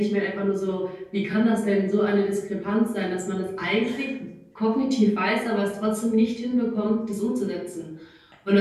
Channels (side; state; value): both; identical; correlation 1.00